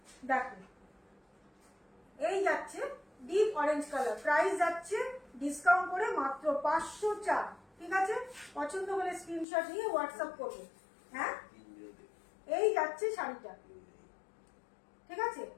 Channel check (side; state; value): right; drops out; at 9.5 s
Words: দেখো এই যাচ্ছে ডিপ অরেঞ্জ কালার। প্রাইস যাচ্ছে ডিসকাউন্ট করে মাত্র 504। ঠিক আছে, পছন্দ হলে স্ক্রিনশট নিয়ে হোয়াটসঅ্যাপ করবে। হ্যাঁ, এই যাচ্ছে শাড়িটা। ঠিক আছে,